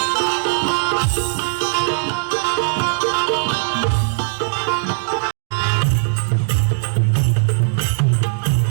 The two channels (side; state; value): left; silent; 58 dB below the other